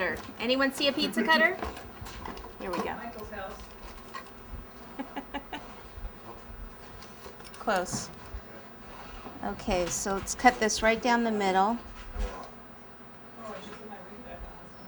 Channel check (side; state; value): both; identical; correlation 1.00